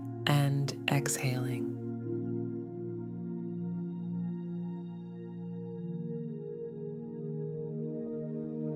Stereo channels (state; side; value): identical; both; correlation 1.00